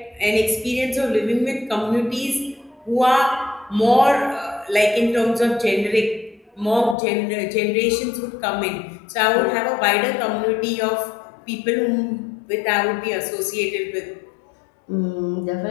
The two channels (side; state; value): right; drops out; at 7.0 s